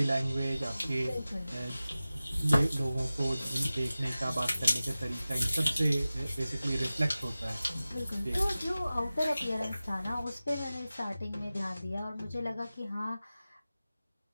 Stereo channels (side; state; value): both; inverted; correlation -0.96